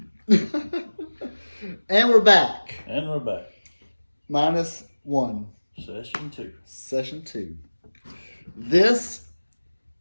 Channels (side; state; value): both; inverted; correlation -1.00